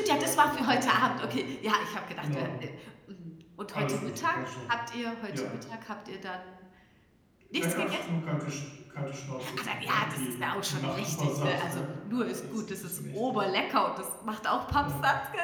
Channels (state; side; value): identical; both; correlation 1.00